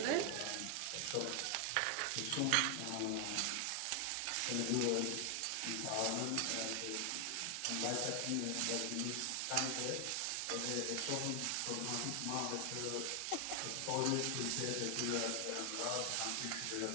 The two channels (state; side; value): different; both; correlation 0.00